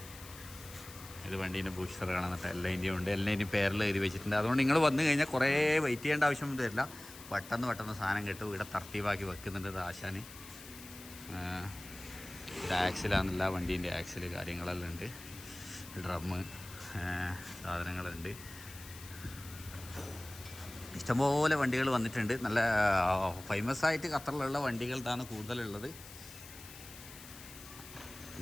ഇത് വണ്ടീൻ്റെ ബൂസ്റ്റർ കാണുന്നിട്ട് എല്ലാതിൻ്റെയും ഉണ്ട്. എല്ലാതിൻ്റെയും പേരെല്ലാം എഴുതി വെച്ചിട്ടുണ്ട്. അതുകൊണ്ട് നിങ്ങൾ വന്നു കഴിഞ്ഞാൽ കുറേ വെയിറ്റ് ചെയ്യേണ്ട ആവശ്യമൊന്നും വരില്ല. പെട്ടെന്ന് സാധനം കിട്ടും. ഇവിടെ തർത്തീവാക്കി വെക്കുന്നുണ്ട് ആശാന്. ഇത് ആക്സിലാണെന്നില്ല, വണ്ടീൻ്റെ ആക്സിൽ കാര്യങ്ങളെല്ലാം ഉണ്ട്. ഡ്രമ്മ് സാധനങ്ങളുണ്ട്. ഇഷ്ടംപോലെ വണ്ടികൾ വന്നിട്ടുണ്ട്. നല്ല ഫേമസ് ആയിട്ട് ഖത്തറിലുള്ള വണ്ടികളാണ് കൂടുതലുള്ളത്.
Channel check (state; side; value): noise; left; hiss, 16 dB below the sound